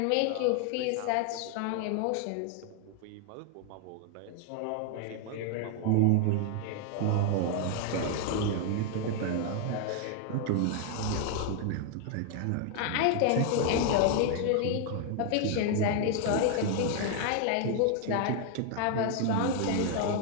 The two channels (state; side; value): different; both; correlation 0.00